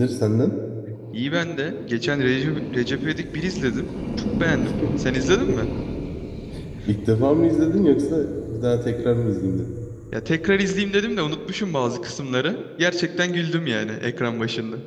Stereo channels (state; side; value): identical; both; correlation 1.00